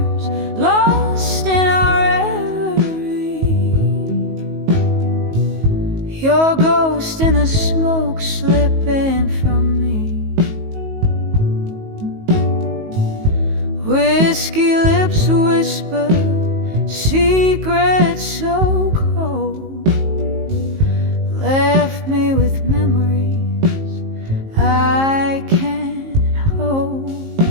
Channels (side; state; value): left; late; 19 ms